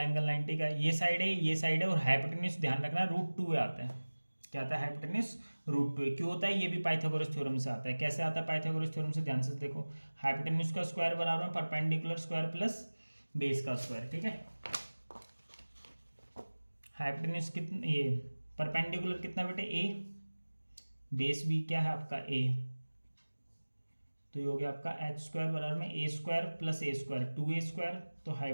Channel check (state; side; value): inverted; both; correlation -1.00